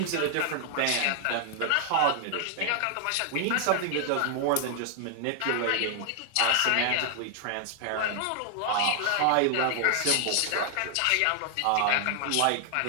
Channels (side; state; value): both; different; correlation 0.00